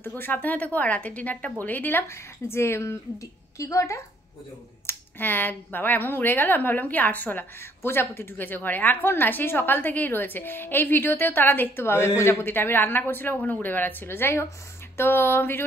থেকো, সাবধানে থেকো। আর রাতের ডিনারটা বলেই দিলাম যে কি গো ওটা, হ্যাঁ বাবা এমন উড়ে গেল, আমি ভাবলাম কি আরশোলা, প্রজাপতি ঢুকেছে ঘরে। এখন না, সেই সকাল থেকেই রয়েছে, এই ভিডিওতেও তারা দেখতে পাবে প্রজাপতিটা, আমি রান্না করছিলাম ওখানে উড়ে বেড়াচ্ছিল। যাই হোক, তো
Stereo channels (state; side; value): normal; both; correlation 0.64